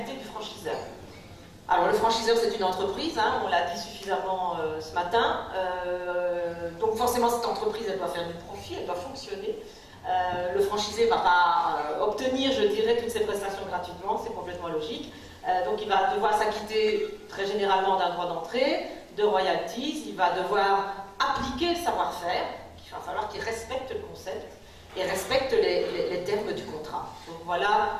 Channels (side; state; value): both; identical; correlation 1.00